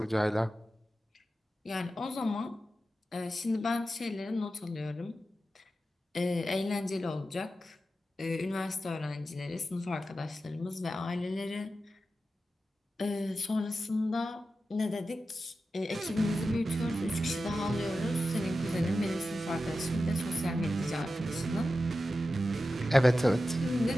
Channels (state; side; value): normal; both; correlation 0.92